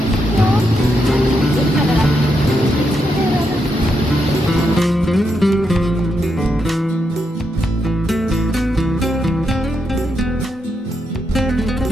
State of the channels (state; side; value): normal; both; correlation 0.82